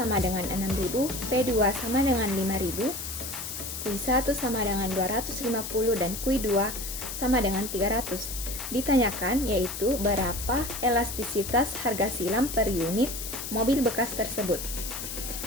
dengan 6.000, P2 sama dengan 5.000, Q1 sama dengan 250 dan Q2 sama dengan 300. Ditanyakan yaitu berapa elastisitas harga silang per unit mobil bekas tersebut.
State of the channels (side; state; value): left; noise; hiss, 7 dB below the sound